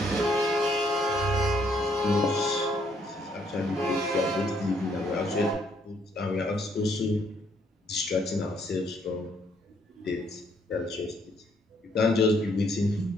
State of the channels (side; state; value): both; normal; correlation 0.69